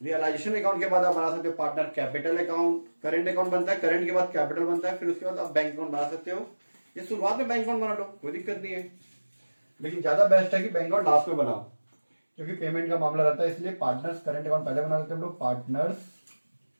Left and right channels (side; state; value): both; inverted; correlation -1.00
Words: रियलाइजेशन अकाउंट के बाद आप बना सकते हो partner capital account, current account बनता है, करेंट के बाद कैपिटल बनता है, फिर उसके बाद आप बैंक अकाउंट बना सकते हो। ये शुरुआत में बैंक अकाउंट बना लो, कोई दिक्कत नहीं है, लेकिन ज्यादा बेस्ट है कि बैंक अकाउंट लास्ट में बनाओ, क्योंकि पेमेंट का मामला रहता है, इसलिए पार्टनर्स करेंट अकाउंट पहले बना लेते हैं हम लोग, पार्टनर्स